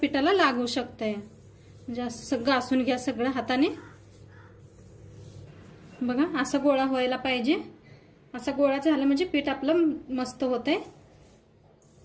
लागू शकतंय। म्हणजे असं घासून घ्या सगळं हाताने। बघा असा गोळा व्हायला पाहिजे। असा गोळा झाला म्हणजे पीठ आपलं मस्त होतंय,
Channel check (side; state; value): both; identical; correlation 1.00